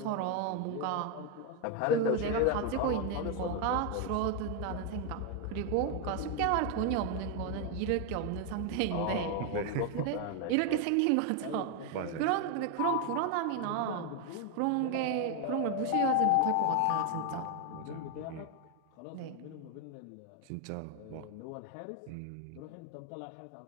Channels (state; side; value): different; both; correlation 0.01